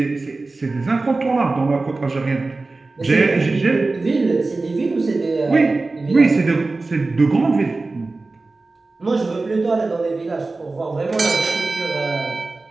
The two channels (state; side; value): quieter; left; 3.5 dB